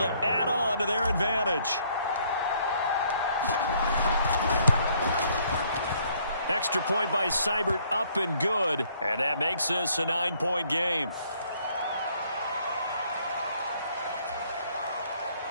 add on to their advantage. Extra point by Seibert, up and good. And that makes this a 9-point game.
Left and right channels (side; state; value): both; inverted; correlation -0.65